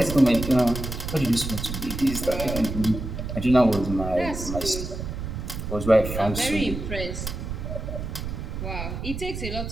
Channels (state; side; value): noise; right; rumble, 6 dB below the sound